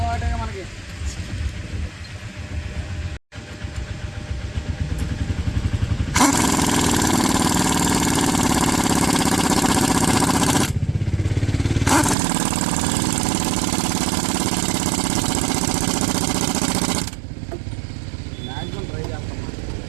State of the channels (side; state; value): left; drops out; at 12.2 s